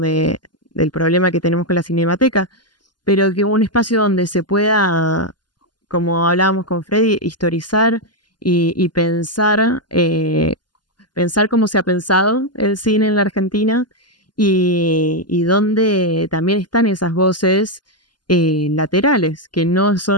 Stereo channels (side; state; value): right; late; 0.71 ms